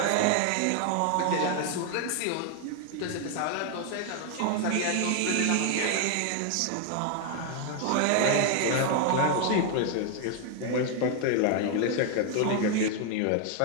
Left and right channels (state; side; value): different; both; correlation 0.00